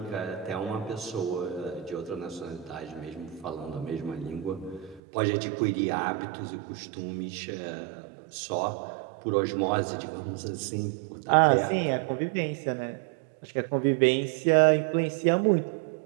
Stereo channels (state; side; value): drops out; left; at 5.0 s